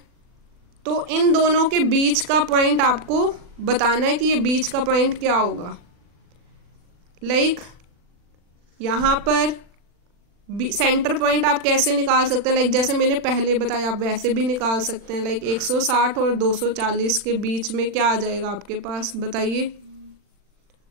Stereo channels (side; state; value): left; late; 40 ms